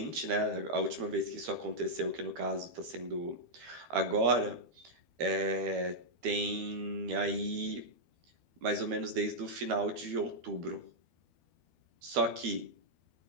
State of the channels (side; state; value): left; late; 12 ms